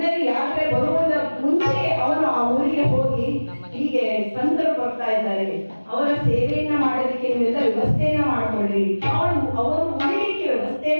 ಯಾತ್ರೆ ಬರುವುದ ಮುಂಚೆ ಅವನು ಆ ಊರಿಗೆ ಹೋಗಿ ಹೀಗೆ ಸಂತರು ಬರ್ತಾ ಇದ್ದಾರೆ, ಅವರ ಸೇವೆಯನ್ನ ಮಾಡೋದಕ್ಕೆ ನೀವೆಲ್ಲ ವ್ಯವಸ್ಥೆಯನ್ನ ಮಾಡ್ಕೊಳ್ರಿ, ಅವರು ಉಳಿಲಿಕ್ಕೆ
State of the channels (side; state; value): both; inverted; correlation -1.00